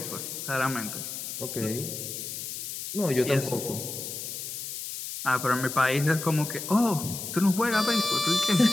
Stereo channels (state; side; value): noise; left; hiss, 7 dB below the sound